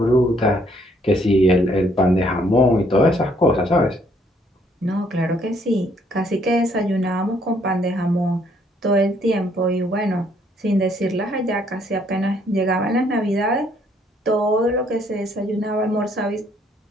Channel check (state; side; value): normal; both; correlation 0.67